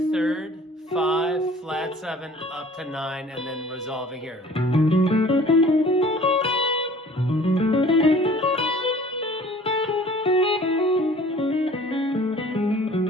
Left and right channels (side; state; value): both; normal; correlation 0.49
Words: third, 5, flat 7, up to 9, and then resolving here.